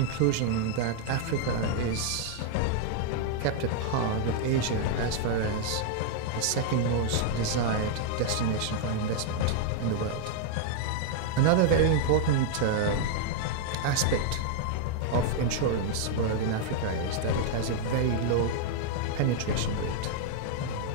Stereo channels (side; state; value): both; different; correlation -0.01